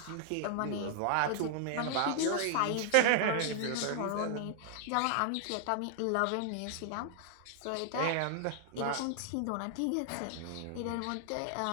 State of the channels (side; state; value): both; different; correlation 0.00